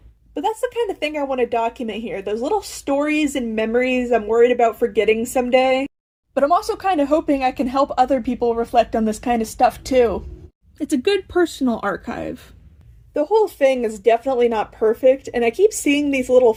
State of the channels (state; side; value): identical; both; correlation 1.00